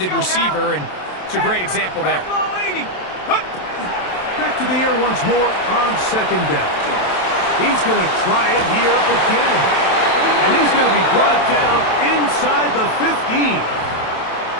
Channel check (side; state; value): right; late; 27 ms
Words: receiver, and it's a great example there. Back to the air once more on 2nd down. He's going to try it here again. And he's going to be brought down inside the 15.